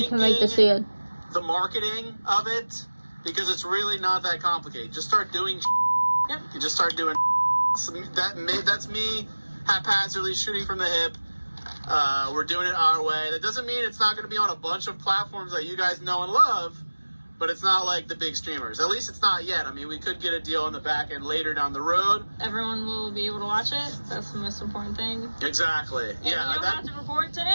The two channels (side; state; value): both; inverted; correlation -1.00